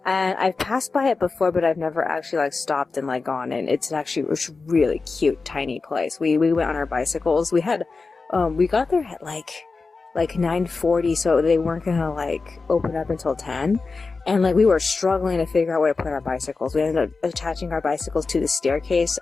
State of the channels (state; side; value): quieter; right; 4.2 dB